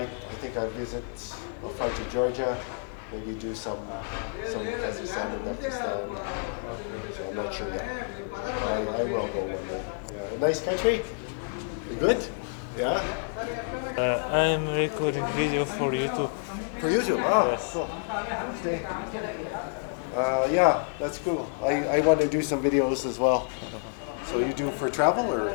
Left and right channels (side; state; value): right; silent; 56 dB below the other